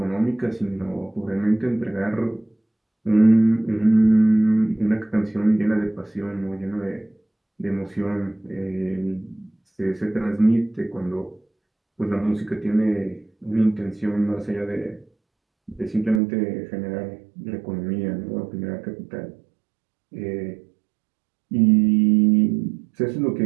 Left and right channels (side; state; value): left; drops out; at 16.2 s